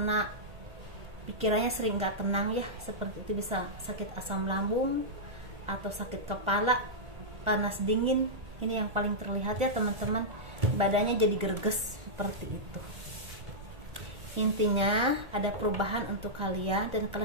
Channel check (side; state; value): left; late; 1.4 ms